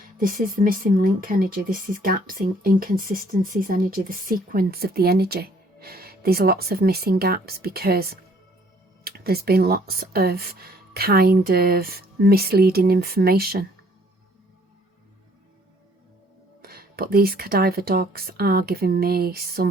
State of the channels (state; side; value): normal; both; correlation 0.61